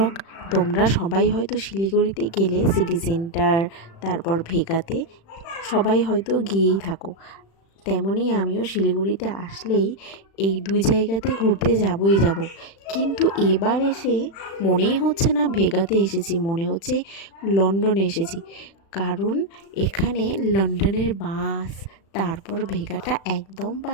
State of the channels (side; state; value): right; late; 36 ms